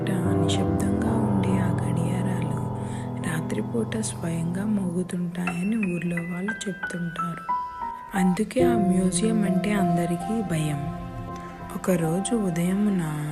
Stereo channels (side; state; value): both; identical; correlation 1.00